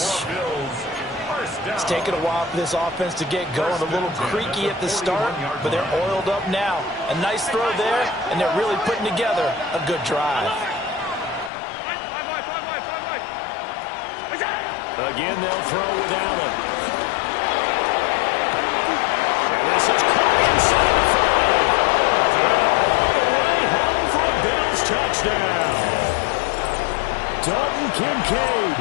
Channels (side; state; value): right; drops out; at 11.5 s